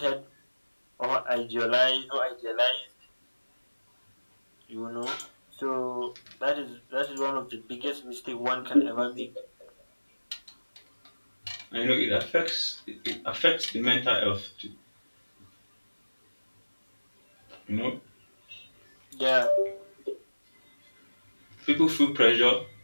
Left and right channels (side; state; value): both; inverted; correlation -1.00